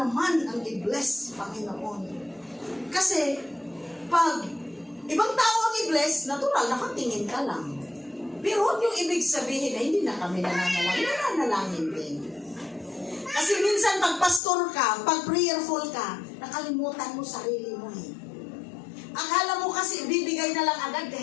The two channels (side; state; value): right; drops out; at 14.4 s